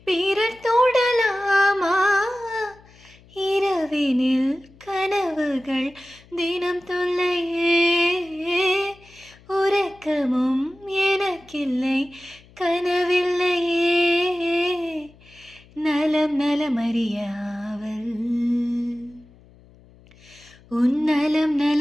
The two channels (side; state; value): left; noise; hum, 26 dB below the sound